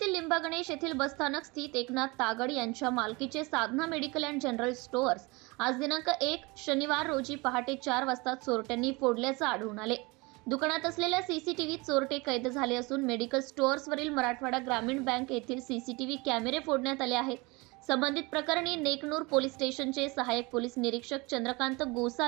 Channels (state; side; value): quieter; left; 25.6 dB